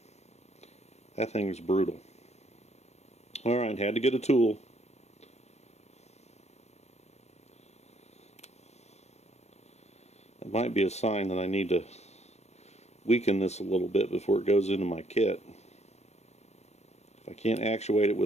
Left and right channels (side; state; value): right; late; 0.32 ms